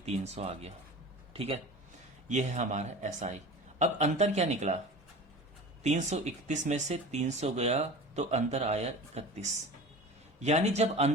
300 आ गया, ठीक है। ये है हमारा SI। अब अंतर क्या निकला, 331 में से 300 गया तो अंतर आया 31, यानी जब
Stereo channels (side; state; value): both; normal; correlation 0.35